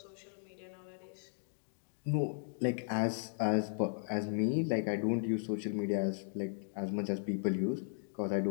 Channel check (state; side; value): silent; right; digital silence